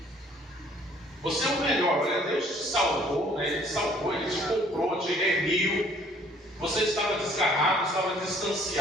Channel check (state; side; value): normal; both; correlation 0.59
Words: Você é o melhor. Olha, Deus te salvou, né? Ele te salvou, Ele te comprou, te remiu. Você estava desgarrado, estava